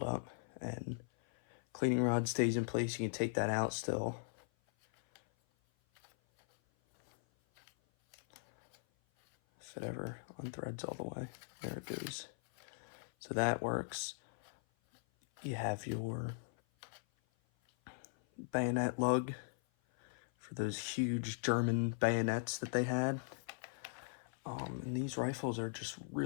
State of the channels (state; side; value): silent; right; 51 dB below the other